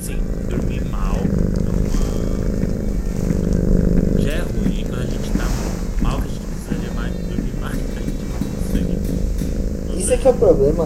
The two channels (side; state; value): both; identical; correlation 1.00